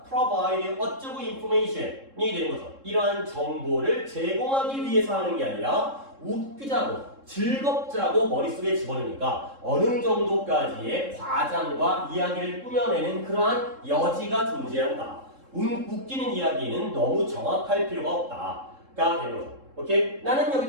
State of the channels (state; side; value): late; left; 3.7 ms